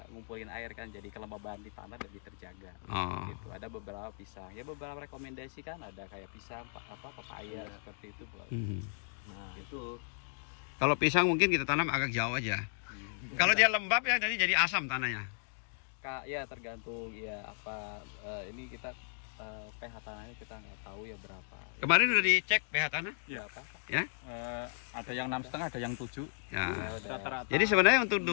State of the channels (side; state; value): right; silent; digital silence